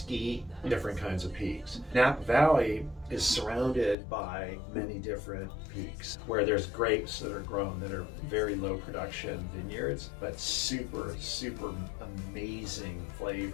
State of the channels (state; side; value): drops out; right; at 4.0 s